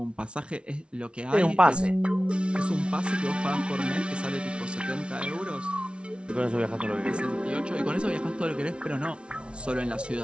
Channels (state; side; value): late; left; 0.058 ms